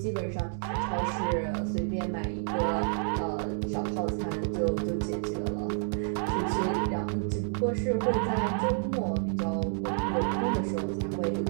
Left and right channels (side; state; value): left; silent; 58 dB below the other